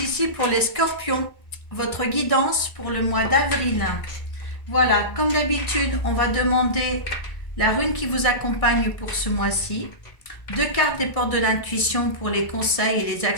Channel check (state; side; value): late; right; 1.7 ms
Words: ici pour les scorpions, votre guidance pour le mois d'avril. Voilà, comme d'habitude, on va demander la rune qui vous accompagne pour ce mois-ci, 2 cartes des portes de l'intuition pour les conseils et les